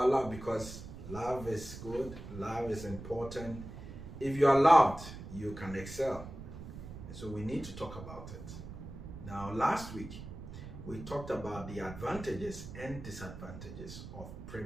love because love is good, love is important. If you are loved, you can excel. And so we need to talk about it. Now, last week, we talked about the advantages and disadvantages of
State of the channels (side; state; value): right; noise; rumble, 11 dB below the sound